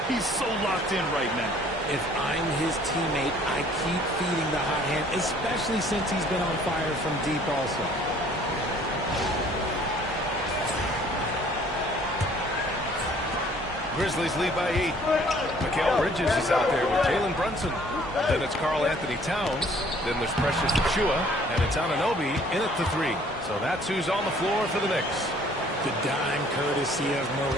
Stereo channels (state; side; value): normal; both; correlation 0.57